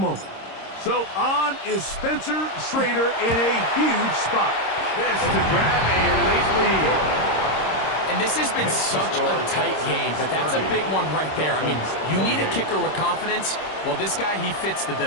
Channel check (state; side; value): late; right; 26 ms